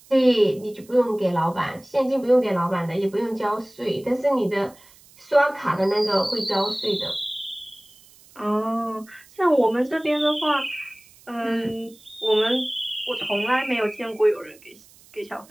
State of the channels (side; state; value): right; noise; hiss, 26 dB below the sound